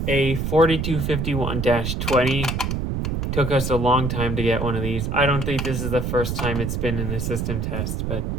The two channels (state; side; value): noise; right; rumble, 2 dB below the sound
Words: a 4251-20. Took us a long time to get one of these. I don't think this is the first time it's been in the system test, but,